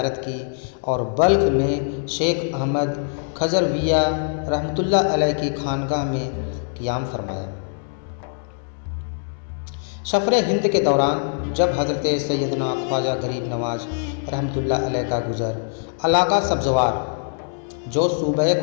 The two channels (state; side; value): silent; right; digital silence